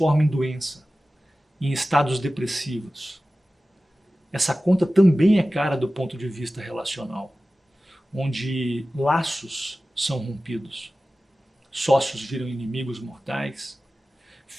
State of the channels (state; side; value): normal; both; correlation 0.96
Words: em doença, em estados depressivos. Essa conta também é cara do ponto de vista relacional, onde laços são rompidos, sócios viram inimigos mortais,